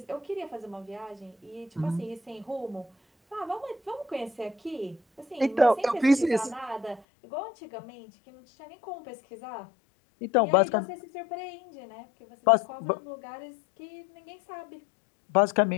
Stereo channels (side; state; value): right; drops out; at 7.0 s